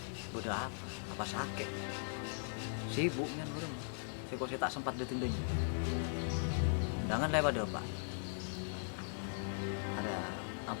Udah apa? Apa sakit? Sibuk kan orang. Saya tak sempat ditundanya. Undangan lewat pada Pak. Ada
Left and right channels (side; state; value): right; silent; digital silence